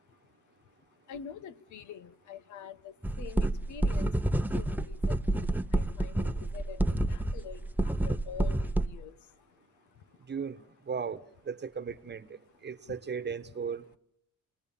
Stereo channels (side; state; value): both; normal; correlation 0.83